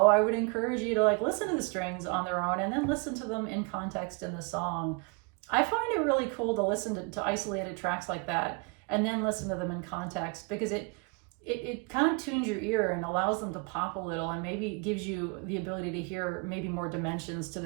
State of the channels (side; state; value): left; quieter; 31.5 dB